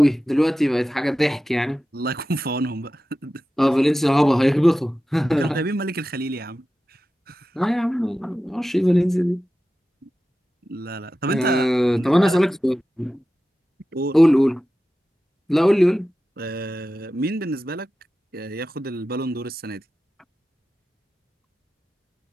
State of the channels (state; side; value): normal; both; correlation 0.93